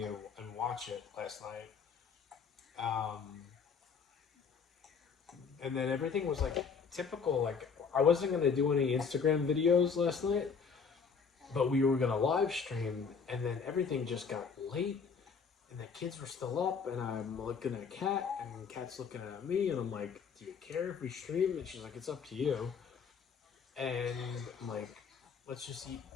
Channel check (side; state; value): right; quieter; 5.8 dB